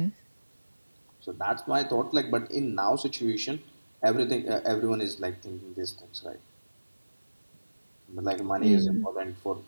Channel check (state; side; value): inverted; both; correlation -1.00